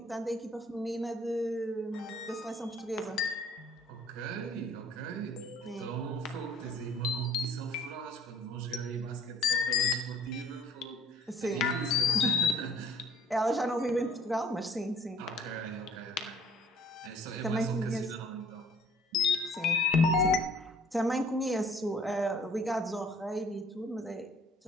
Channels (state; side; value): normal; both; correlation 0.54